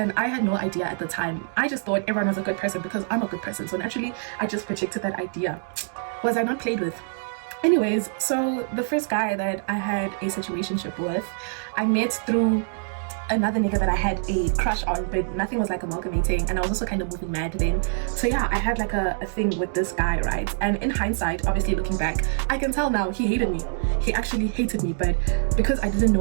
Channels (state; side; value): silent; left; digital silence